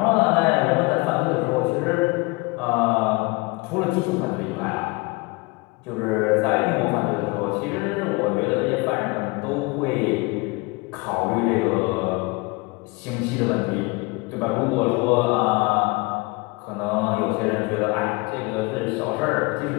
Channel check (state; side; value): quieter; right; 25.6 dB